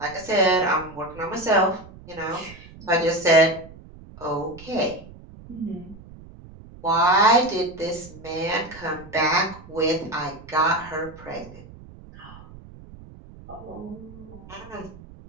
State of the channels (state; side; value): noise; right; rumble, 19 dB below the sound